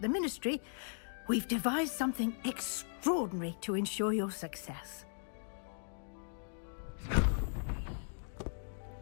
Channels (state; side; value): silent; right; digital silence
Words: the Ministry, we've devised something extraordinary to ensure your success.